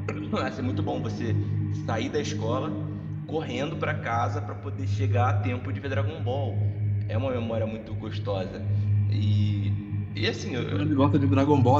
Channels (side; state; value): both; identical; correlation 1.00